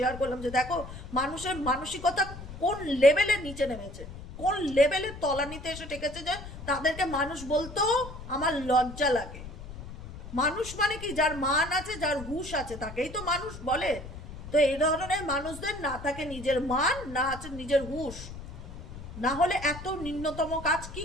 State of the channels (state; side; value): noise; left; rumble, 12 dB below the sound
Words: করলাম যে দেখো মানুষের মানসিকতা কোন লেভেলের নিচে নেমেছে, কোন লেভেলের তলানিতে এসে ঠেকেছে, যে তাদেরকে মানুষ বলতেও আমার লজ্জা লাগে। মানুষ মানে কি, যার মান আছে, যার হুঁশ আছে, তাকেই তো মানুষ বলে। তো এই ধরনের মানুষদের না থাকে নিজের মান, না আছে নিজের হুঁশ, না হলে এত নিম্নতম কাজ কি